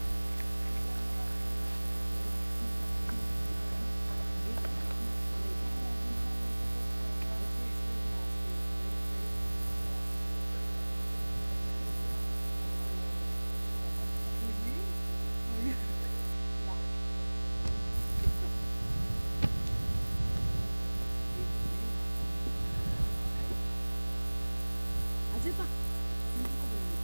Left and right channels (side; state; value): both; inverted; correlation -1.00